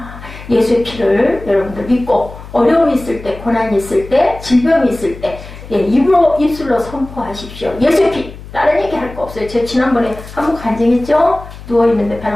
예수의 피를 여러분들 믿고 어려움이 있을 때, 고난이 있을 때, 질병이 있을 때 입술로 선포하십시오. 예수의 피! 다른 얘기 할 거 없어요. 제가 지난번에 한번 간증했죠? 누워있는데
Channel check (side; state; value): left; noise; hum, 15 dB below the sound